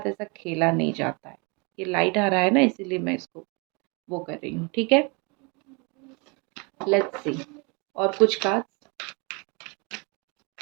ऐसा खेला नहीं जाता है। ये लाइट आ रहा है ना, इसीलिए मैं इसको वो कर रही हूँ। ठीक है, लेट्स सी। और कुछ card.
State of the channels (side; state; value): left; quieter; 31.1 dB